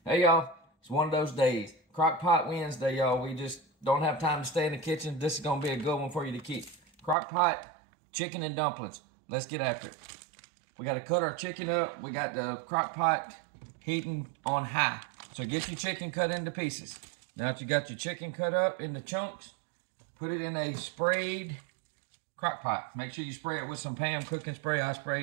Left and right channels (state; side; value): drops out; left; at 7.2 s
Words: Hey y'all, it's one of those days. Crockpot Wednesday, y'all. We just don't have time to stay in the kitchen. This is gonna be a good one for you to keep. Crockpot chicken and dumplings. Let's get after it. We gotta cut our chicken up. We got the crockpot heating on high. So get your chicken cut into pieces. Now that you got your chicken cut up into chunks, put it in a sprayed crockpot. Make sure you spray it with some Pam cooking spray. I